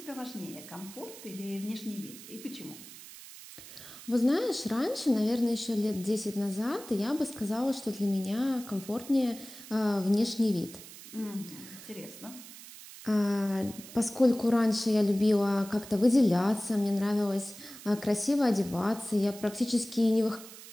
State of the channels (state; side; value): noise; right; hiss, 16 dB below the sound